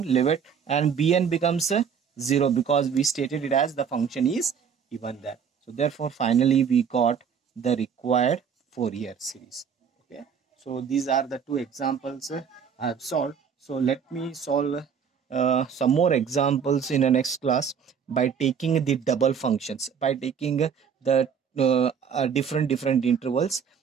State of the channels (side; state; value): left; quieter; 7.2 dB